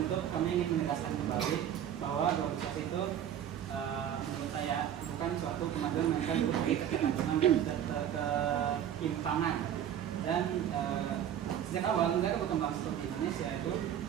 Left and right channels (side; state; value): left; quieter; 10.0 dB